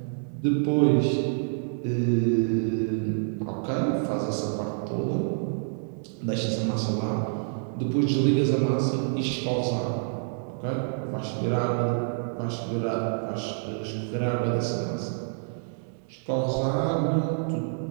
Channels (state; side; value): silent; left; digital silence